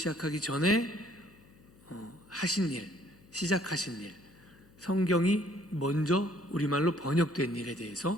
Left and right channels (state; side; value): noise; left; hum, 26 dB below the sound